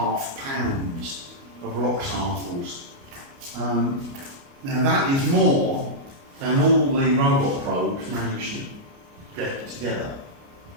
pounds of rock samples. Now that is more than all the robot probes managed to get together.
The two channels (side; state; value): left; late; 29 ms